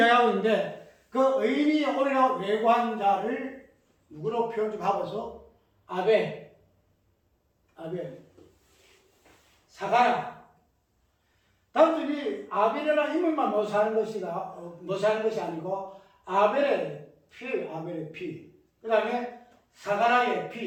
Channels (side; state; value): both; identical; correlation 1.00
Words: 있는데, 그 의인이 오리라고 외고한 자를 누구로 표현 좀 하고서 아벨, 사가라. 단순히 아벨이라는 인물만 모사하는 것이 아니고 아벨의 피, 그 다음에 사가라의